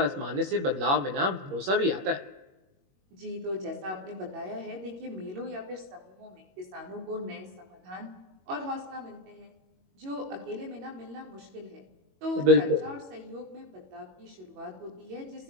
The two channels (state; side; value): late; left; 21 ms